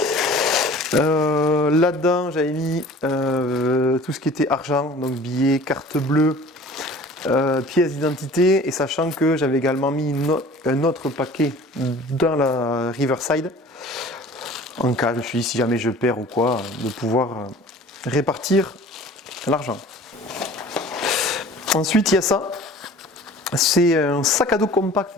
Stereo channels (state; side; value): normal; both; correlation 0.45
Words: Là-dedans, j'avais mis tout ce qui était argent, donc billets, carte bleue, pièces d'identité, et sachant que j'avais également mis un autre paquet dans la Riverside en cas, je me suis dit si jamais je perds ou quoi, de pouvoir répartir l'argent. Ensuite il y a ça, c'est un sac à dos compact